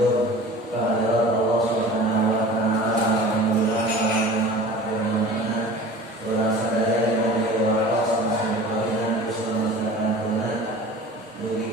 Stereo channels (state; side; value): normal; both; correlation 0.40